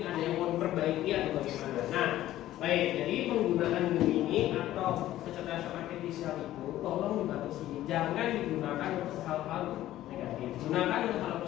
ada yang mau diperbaiki atau bagaimana. Nah, baik. Jadi penggunaan Gemini atau kecerdasan artifisial itu tolong dibatasi, jangan digunakan untuk hal-hal negatif. Gunakan untuk hal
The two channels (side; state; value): right; quieter; 14.0 dB